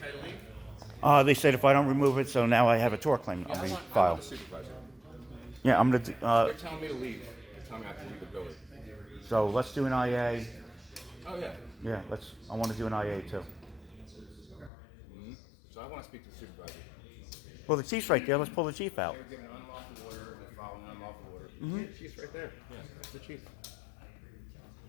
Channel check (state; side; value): drops out; right; at 14.7 s